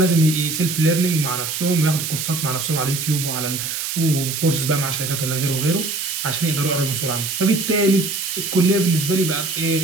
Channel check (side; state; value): right; noise; hiss, 4 dB below the sound